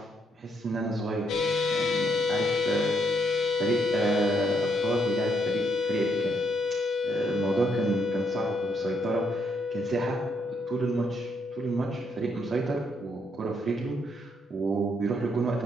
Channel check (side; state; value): both; normal; correlation 0.74